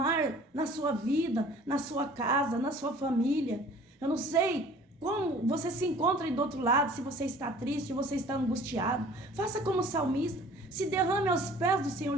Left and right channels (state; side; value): normal; both; correlation 0.49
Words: na sua vida, na sua casa, na sua família. Eu não sei como você se encontra aí do outro lado, se você está triste, se você está angustiado. Faça como o salmista. Se derrame aos pés do Senhor